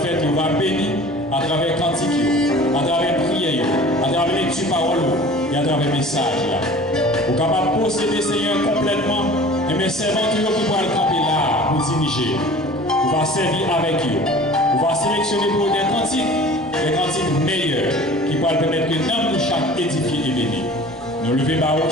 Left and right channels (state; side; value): noise; right; rumble, 24 dB below the sound